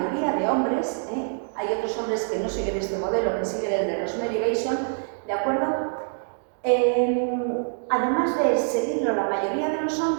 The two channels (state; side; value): silent; left; digital silence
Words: de hombres, hay otros hombres que no siguen este modelo, que siguen el de Rosemary Bason, ¿de acuerdo? Además de seguirlo la mayoría de los